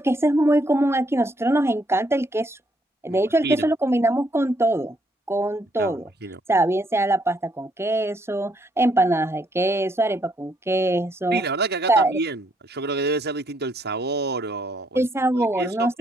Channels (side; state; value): both; normal; correlation 0.72